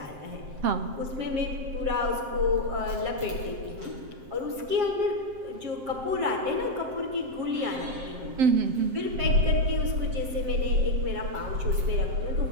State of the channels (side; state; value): left; late; 7.4 ms